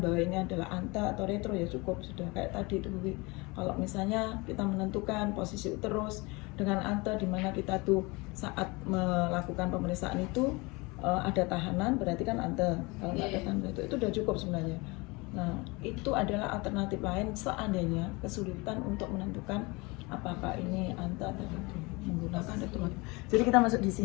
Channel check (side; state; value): right; quieter; 25.6 dB